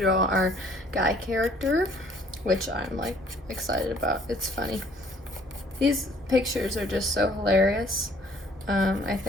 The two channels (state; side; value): normal; both; correlation 0.58